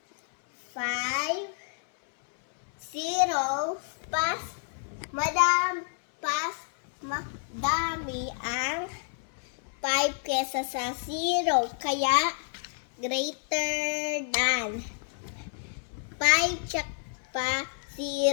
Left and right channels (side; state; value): right; silent; 58 dB below the other